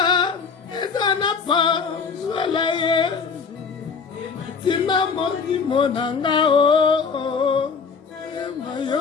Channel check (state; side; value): quieter; right; 5.5 dB